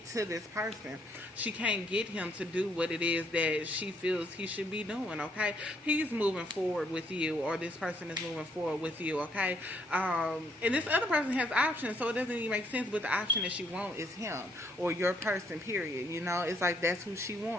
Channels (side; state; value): both; normal; correlation 0.70